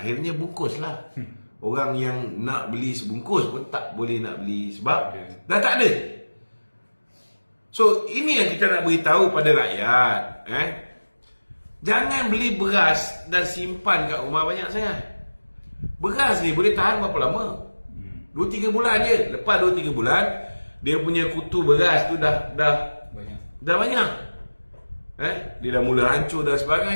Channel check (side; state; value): both; inverted; correlation -1.00